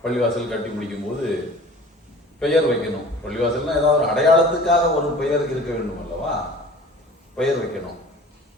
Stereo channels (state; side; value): normal; both; correlation 0.44